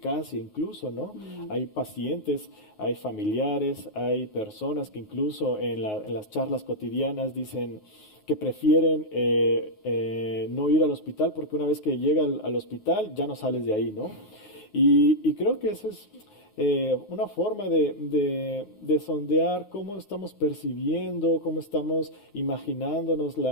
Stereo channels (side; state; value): right; late; 9.5 ms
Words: incluso, ¿no? Hay pacientes, hay familiares, hay personas que incluso en las charlas cotidianas dicen que prefieren no ir al hospital porque una vez que llega al hospital ya no sales de ahí, ¿no? Y creo que eso es una forma de sondear cómo estamos percibiendo, cómo estamos imaginándonos